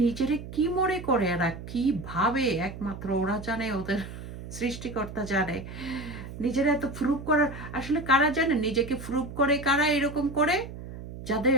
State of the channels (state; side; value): noise; right; hum, 11 dB below the sound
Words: নিজেরে কি মনে করে এরা, কি ভাবে একমাত্র ওরা জানে, ওদের সৃষ্টিকর্তা জানে। নিজেরা এত প্রুভ করার, আসলে কারা জানে নিজেকে প্রুভ করে, কারা এরকম করে?